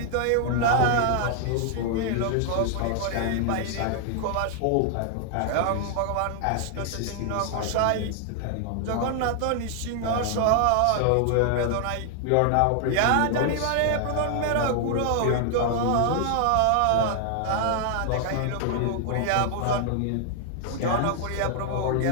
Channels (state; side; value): different; both; correlation 0.00